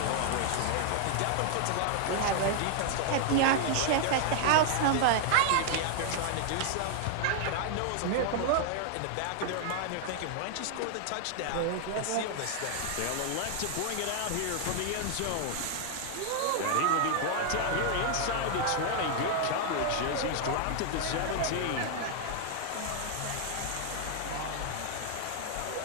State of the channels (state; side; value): different; both; correlation 0.00